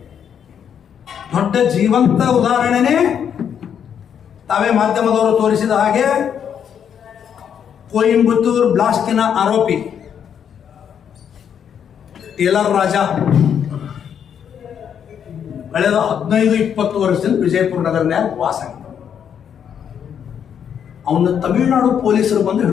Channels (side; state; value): right; quieter; 8.3 dB